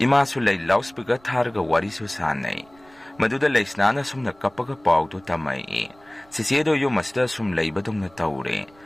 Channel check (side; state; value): right; noise; rumble, 29 dB below the sound